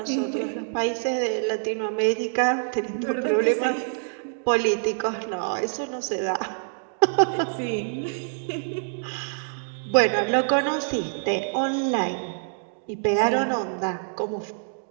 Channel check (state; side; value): silent; left; digital silence